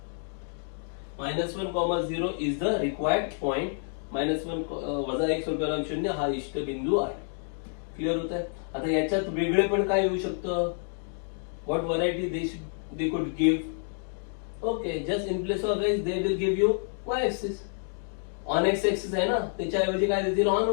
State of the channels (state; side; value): silent; right; 59 dB below the other